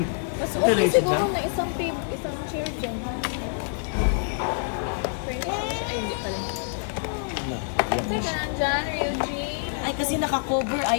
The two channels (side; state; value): right; silent; digital silence